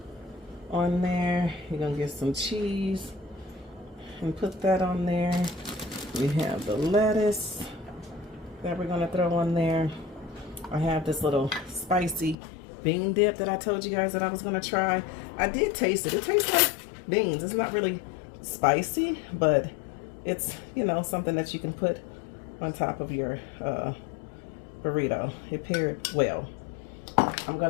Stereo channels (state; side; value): drops out; right; at 12.4 s